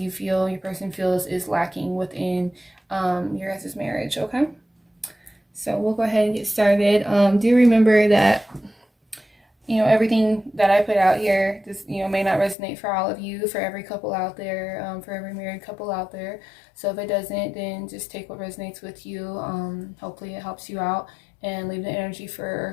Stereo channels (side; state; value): right; drops out; at 12.6 s